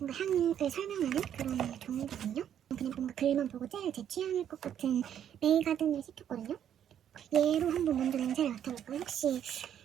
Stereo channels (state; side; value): quieter; left; 9.7 dB